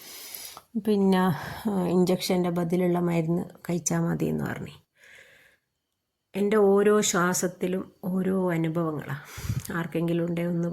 പിന്നെ ഇഞ്ചക്ഷൻ്റെ ബദലുള്ള മരുന്ന് കഴിച്ചാൽ മതി എന്ന് പറഞ്ഞു. എൻ്റെ ഓരോ ശ്വാസത്തിലും ഓരോ അനുഭവങ്ങളാണ്. ആർക്കെങ്കിലും ഉണ്ടേ ഒന്ന്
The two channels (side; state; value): both; identical; correlation 1.00